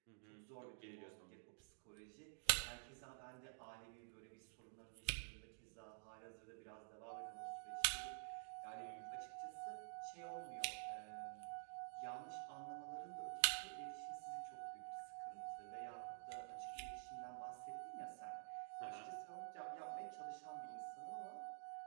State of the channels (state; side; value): silent; left; digital silence